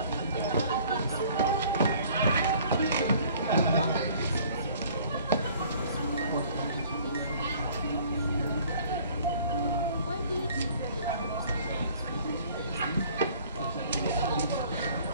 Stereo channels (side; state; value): both; inverted; correlation -0.54